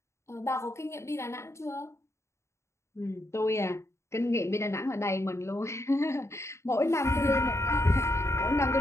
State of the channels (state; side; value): late; right; 0.14 ms